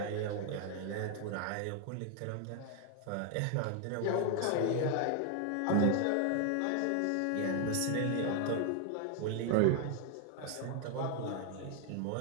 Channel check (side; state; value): both; different; correlation 0.00